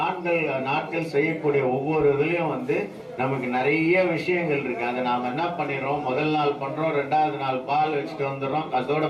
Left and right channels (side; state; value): both; identical; correlation 1.00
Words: நாட்கள் செய்யக்கூடிய ஒவ்வொரு இதுலயும் நமக்கு நிறைய விஷயங்கள் இருக்கு. அதை நாம என்ன பண்ணிடுறோம், முதல் நாள் பண்றோம், 2வது நாள் பால் வச்சுட்டு வந்துடுறோம், அதோட